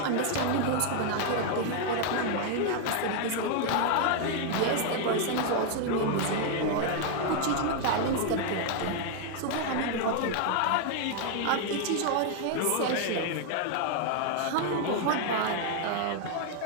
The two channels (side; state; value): both; different; correlation 0.00